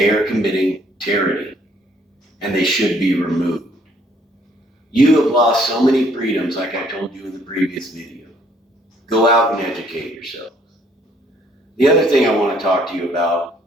are committing tyranny and they should be removed. You have lost so many freedoms, like I told you in the previous video. Go out and educate yourselves. The other thing I want to talk to you about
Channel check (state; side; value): normal; both; correlation 0.64